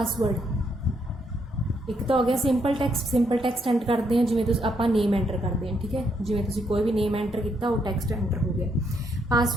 ਇੱਕ ਤਾਂ ਹੋ ਗਿਆ ਸਿੰਪਲ ਟੈਕਸਟ ਐਂਟਰ ਕਰਦੇ ਹਾਂ, ਜਿਵੇਂ ਤੁਸੀਂ ਆਪਾਂ ਨੇਮ ਐਂਟਰ ਕਰਦੇ ਹਾਂ, ਠੀਕ ਹੈ। ਜਿਵੇਂ ਤੁਸੀਂ ਕੋਈ ਵੀ ਨੇਮ ਐਂਟਰ ਕੀਤਾ ਉਹ ਟੈਕਸਟ ਐਂਟਰ ਹੋ ਗਿਆ।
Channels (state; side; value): normal; both; correlation 0.75